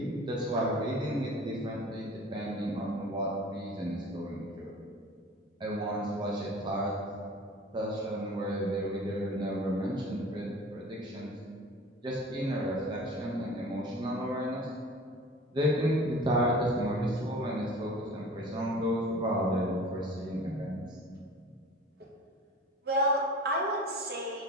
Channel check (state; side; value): normal; both; correlation 0.41